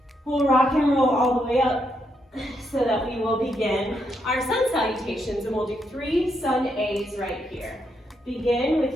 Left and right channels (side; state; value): both; normal; correlation 0.79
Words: we'll rock and roll all the way up so that we will begin our sun salutations, and we'll do 3 sun A's right here. Begin with